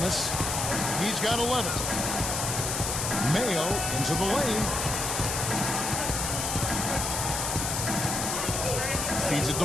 he's got 11. Mayo into the lane. feeds it to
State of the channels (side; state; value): left; noise; hiss, 1 dB below the sound